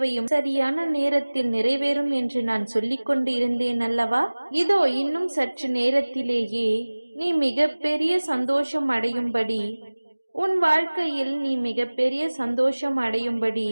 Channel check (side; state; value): both; inverted; correlation -1.00